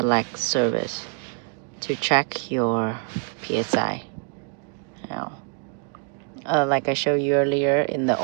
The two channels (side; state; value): left; quieter; 39.3 dB